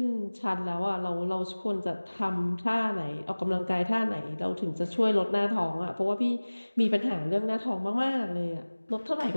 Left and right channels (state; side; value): inverted; both; correlation -1.00